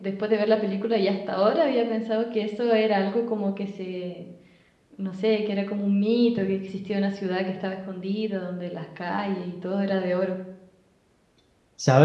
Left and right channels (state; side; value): identical; both; correlation 1.00